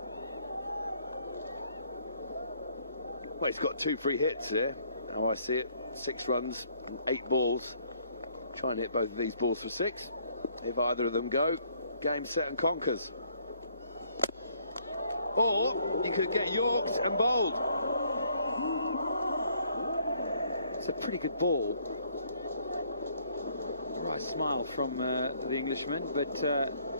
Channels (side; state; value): both; inverted; correlation -0.65